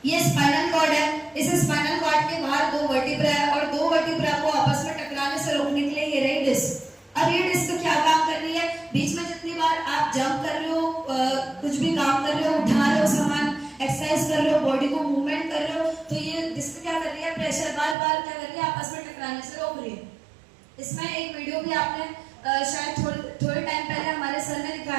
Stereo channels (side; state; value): left; drops out; at 17.9 s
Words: ये स्पाइनल कॉर्ड है। इस स्पाइनल कॉर्ड के बाहर 2 वर्टिब्रा है, और 2 वर्टिब्रा को आपस में टकराने से रोकने के लिए ये रही डिस्क। अब ये डिस्क क्या काम कर रही है, बीच में जितनी बार आप जंप कर रहे हो, कुछ भी काम कर रहे हो, उठा रहे हो सामान, एक्सरसाइज कर रहे हो, बॉडी को मूवमेंट कर रहे हो, तो ये डिस्क क्या कर रही है, प्रेशर बार बार क्या कर रही है, आपस में टकराने से रोक रही है। इसमें एक वीडियो भी आपने शायद थोड़े टाइम पहले हमारे सर ने